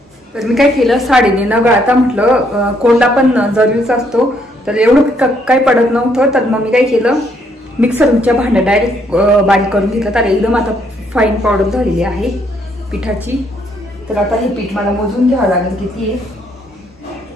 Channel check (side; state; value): both; normal; correlation 0.70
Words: तर मी काय केलं, साडीने न गाळता म्हटलं कोंडा पण जरुरीचा असतो, तर एवढं काही पडत नव्हतं. तर मग मी काय केलं, मिक्सरच्या भांड्यात डायरेक्ट बारीक करून घेतलं. तर एकदम आता फाईन पावडर झालेली आहे पिठाची. तर आता हे पीठ मला मोजून घ्यावं लागेल किती आहे,